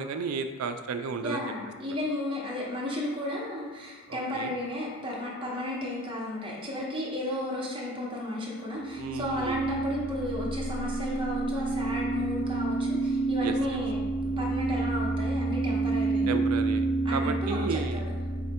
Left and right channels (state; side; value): normal; both; correlation 0.60